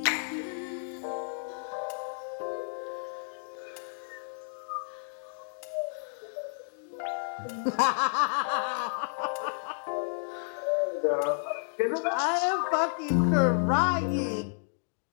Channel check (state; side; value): silent; right; digital silence